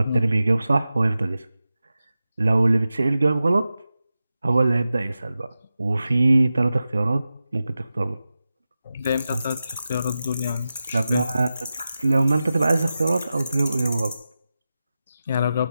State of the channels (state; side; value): inverted; both; correlation -0.93